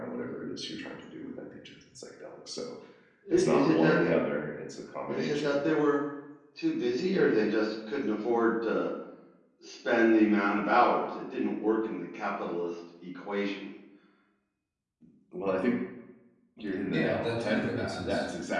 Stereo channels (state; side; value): identical; both; correlation 1.00